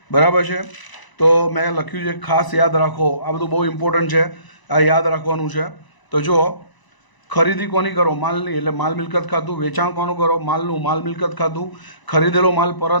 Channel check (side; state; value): right; late; 1.0 ms